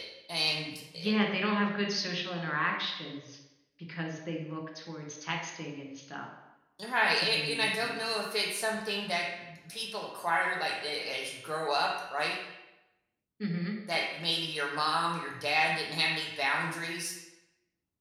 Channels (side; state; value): both; identical; correlation 1.00